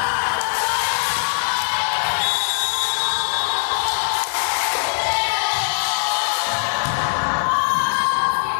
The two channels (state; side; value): silent; right; digital silence